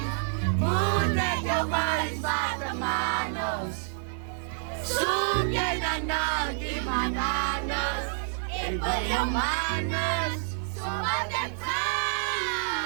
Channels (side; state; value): left; silent; 55 dB below the other